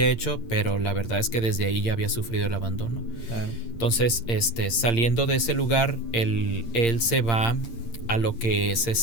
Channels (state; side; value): late; right; 8.7 ms